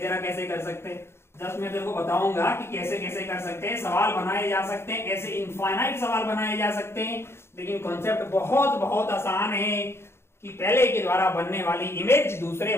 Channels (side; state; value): right; late; 0.12 ms